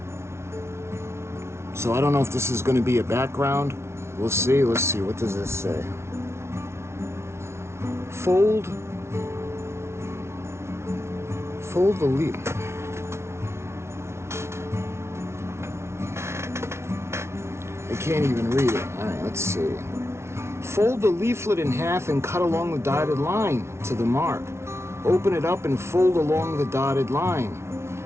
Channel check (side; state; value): left; late; 0.13 ms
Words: so I don't know if this is going to be a background. We'll see. Let's see. What does this say? Fold the leaf. I can't even read it. All right, let's see. Fold the leaflet in half and cut along the dotted line to the mark. Open it up and fold along the dotted line.